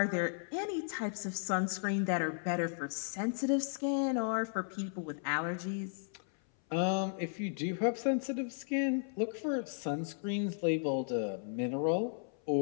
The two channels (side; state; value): right; silent; 54 dB below the other